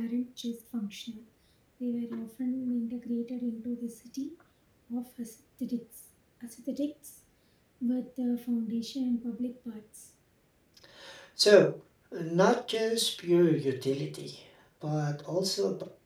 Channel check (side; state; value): both; identical; correlation 1.00